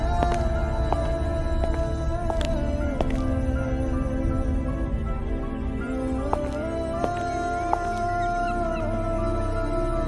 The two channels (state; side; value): identical; both; correlation 1.00